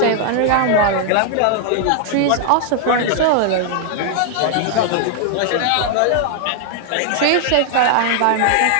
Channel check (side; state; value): both; different; correlation 0.00